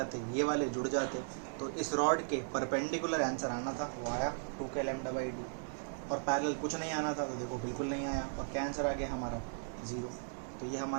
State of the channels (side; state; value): left; silent; digital silence